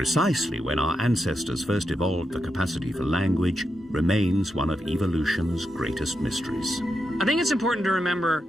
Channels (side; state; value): both; normal; correlation 0.85